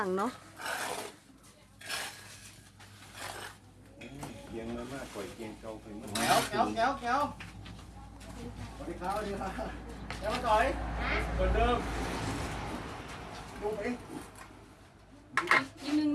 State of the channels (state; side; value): identical; both; correlation 1.00